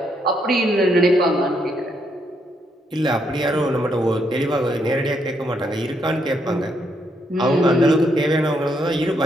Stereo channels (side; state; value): both; normal; correlation 0.76